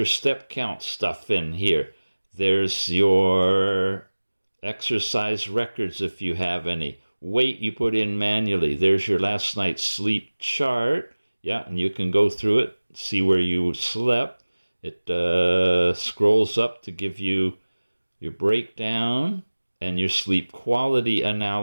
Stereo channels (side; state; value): both; inverted; correlation -1.00